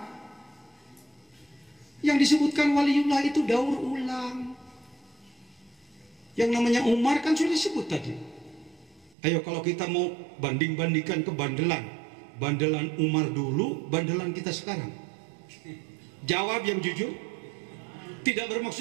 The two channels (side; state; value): left; drops out; at 9.2 s